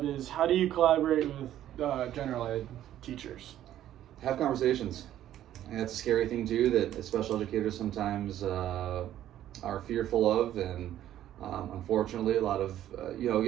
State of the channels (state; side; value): quieter; left; 12.1 dB